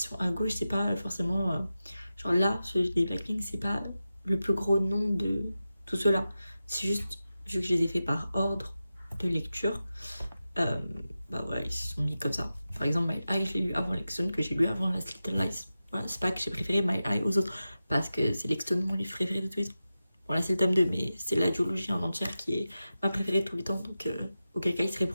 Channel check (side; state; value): both; inverted; correlation -0.93